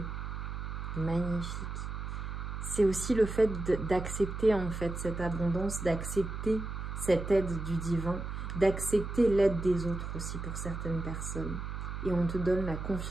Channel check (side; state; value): right; noise; hum, 6 dB below the sound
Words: Magnifique. C'est aussi le fait d'accepter en fait cette abondance, d'accepter cette aide du divin, d'accepter l'aide des autres aussi pour certaines personnes. Et on te donne la